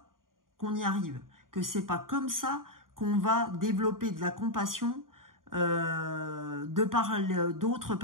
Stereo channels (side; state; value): left; late; 0.90 ms